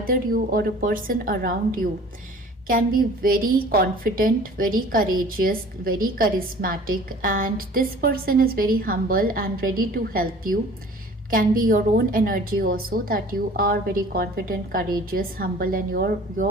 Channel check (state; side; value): normal; both; correlation 0.47